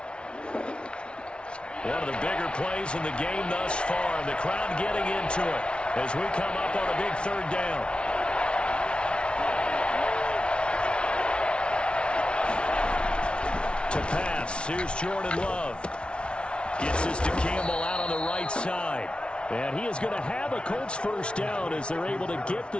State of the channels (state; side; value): late; right; 0.058 ms